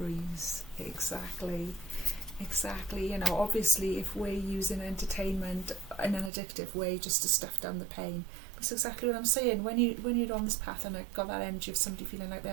Exactly. You know, obviously if we're using entertainment in an addictive way just to stuff down the pain, that's exactly what I'm saying. When you're on this path and got that energy of somebody feeling like they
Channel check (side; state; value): left; drops out; at 6.3 s